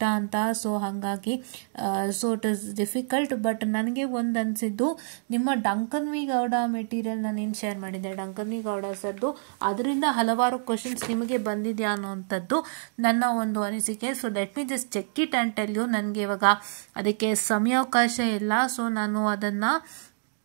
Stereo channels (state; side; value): silent; left; digital silence